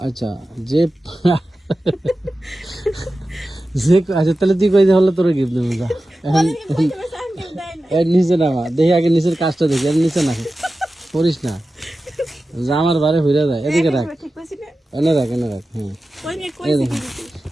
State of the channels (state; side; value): normal; both; correlation 0.94